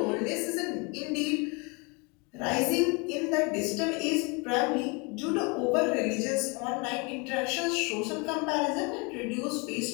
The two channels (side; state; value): right; quieter; 30.2 dB